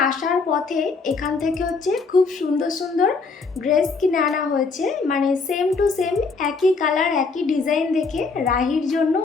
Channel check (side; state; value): right; quieter; 4.4 dB